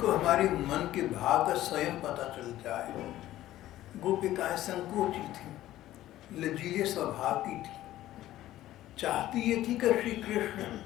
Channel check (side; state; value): right; quieter; 14.3 dB